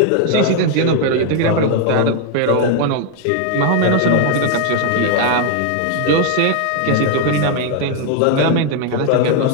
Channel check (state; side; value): different; both; correlation 0.00